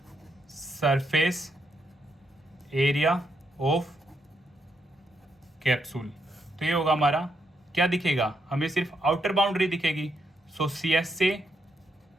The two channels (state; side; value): normal; both; correlation 0.79